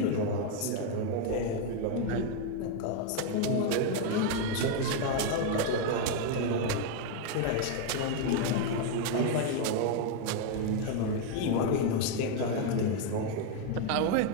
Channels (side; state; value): both; different; correlation 0.01